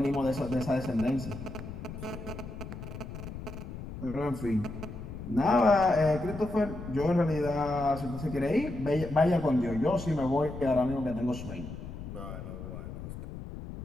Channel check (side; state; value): left; noise; rumble, 10 dB below the sound